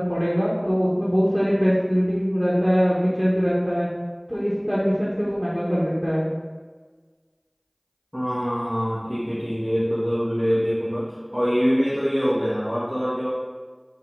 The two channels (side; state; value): both; identical; correlation 1.00